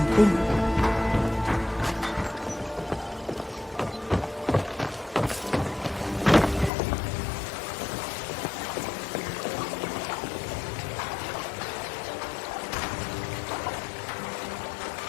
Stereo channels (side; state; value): right; drops out; at 6.7 s